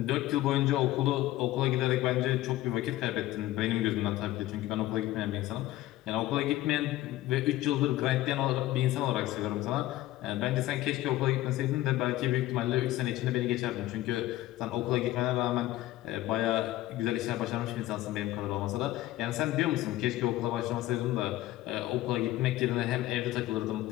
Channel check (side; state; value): right; quieter; 15.6 dB